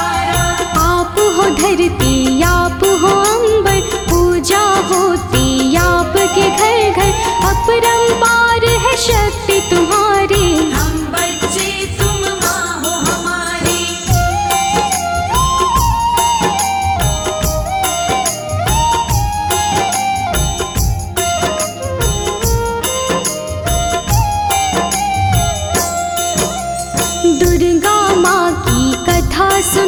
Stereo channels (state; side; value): identical; both; correlation 1.00